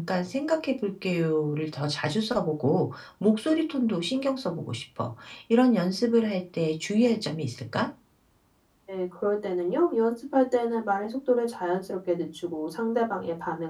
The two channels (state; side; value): identical; both; correlation 1.00